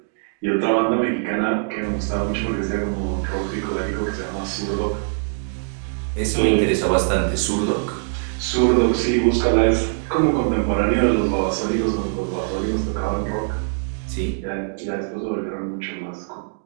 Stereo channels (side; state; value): left; silent; digital silence